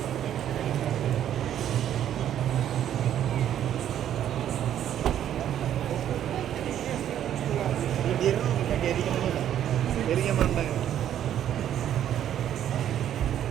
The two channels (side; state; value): left; quieter; 10.6 dB